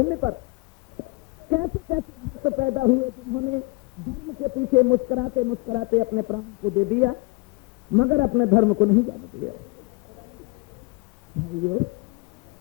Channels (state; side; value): quieter; right; 26.6 dB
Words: पर कैसे कैसे भक्त पैदा हुए जिन्होंने धर्म के पीछे मुस्कुराते मुस्कुराते अपने प्राण को दे दिया, मगर अपने धर्म को नहीं जाने दिया। भाइयों,